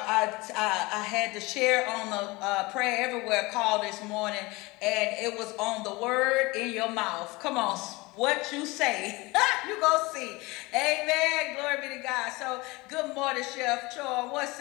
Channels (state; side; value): quieter; right; 23.3 dB